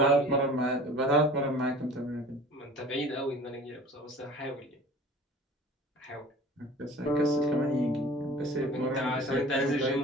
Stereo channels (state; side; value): normal; both; correlation 0.43